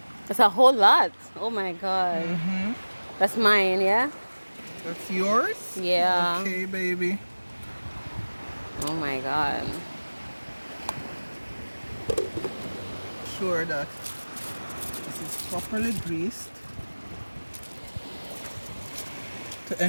That's a whole lot. Oh my god. That's mine, yeah? That's yours? Yeah. Okay, baby. Oh my god. Sure that this is properly greased to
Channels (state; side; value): inverted; both; correlation -1.00